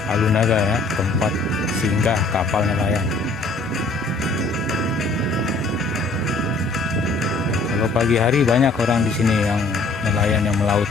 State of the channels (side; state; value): right; quieter; 3.3 dB